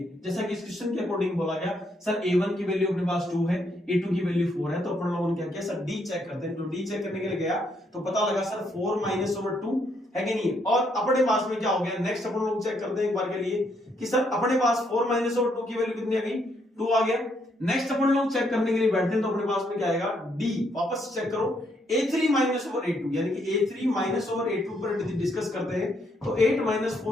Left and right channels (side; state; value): both; normal; correlation 0.73